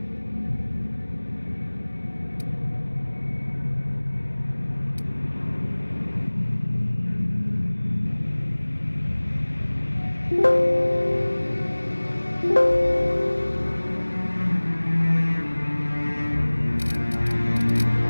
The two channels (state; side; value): inverted; both; correlation -1.00